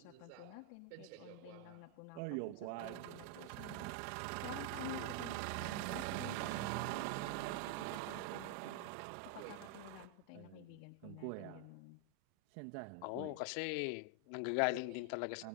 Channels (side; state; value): both; different; correlation 0.00